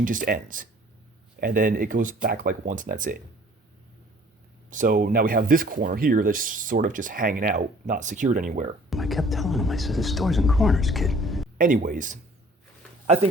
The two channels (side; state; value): both; normal; correlation 0.53